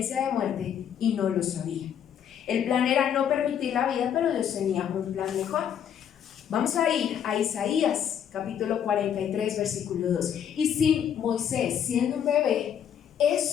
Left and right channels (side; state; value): right; quieter; 8.9 dB